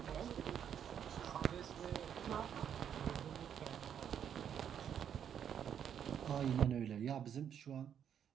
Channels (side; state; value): left; quieter; 8.8 dB